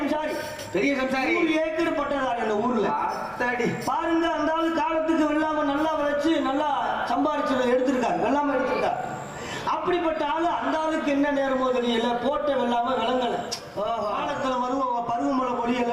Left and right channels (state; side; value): identical; both; correlation 1.00